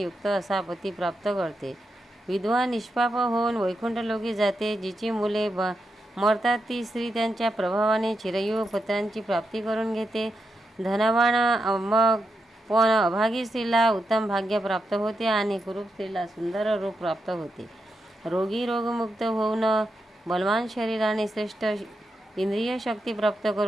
युक्त असा पती प्राप्त करते. विधवा निष्पाप होऊन वैकुंठलोकी जाते. जिची मुले मरतात ती स्त्री त्यांच्या प्रभावाने चिरंजीव पुत्रांची प्राप्ती करून घेते. धनवान पण अभागी स्त्रीला उत्तम भाग्य प्राप्त होते आणि कुरूप स्त्रीला सुंदर रूप प्राप्त होते. रोगी रोगमुक्त होऊन बलवान शरीर आणि श्रेष्ठ इंद्रिय शक्ती प्राप्त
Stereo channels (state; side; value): normal; both; correlation 0.85